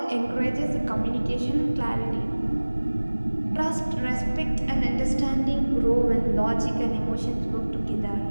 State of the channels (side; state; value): both; inverted; correlation -1.00